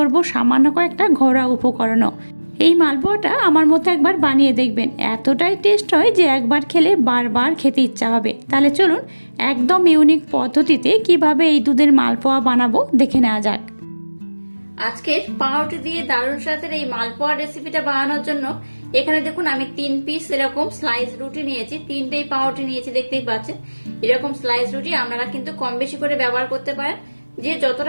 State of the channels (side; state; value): both; inverted; correlation -1.00